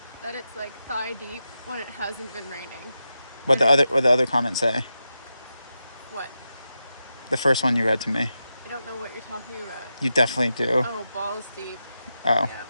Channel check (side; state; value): both; inverted; correlation -0.89